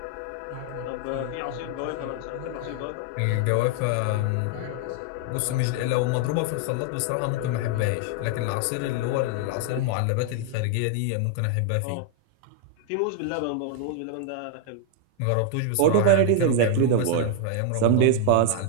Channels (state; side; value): different; both; correlation 0.00